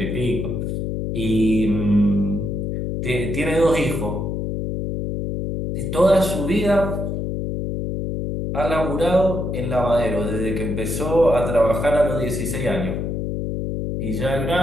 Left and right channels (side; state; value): left; noise; hum, 2 dB below the sound